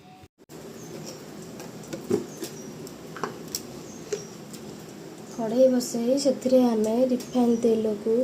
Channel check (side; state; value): both; identical; correlation 1.00